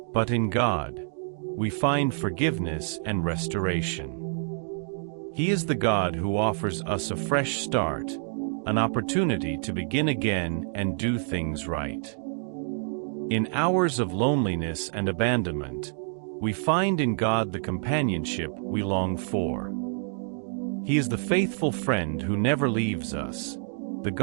But in God, we find forgiveness and restoration. He is the God who offers us a fresh start, an opportunity to begin again and do things right. In hours of loneliness and abandonment, we find in God the companionship we long for. He is the faithful friend who never leaves us, the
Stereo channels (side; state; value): left; silent; 60 dB below the other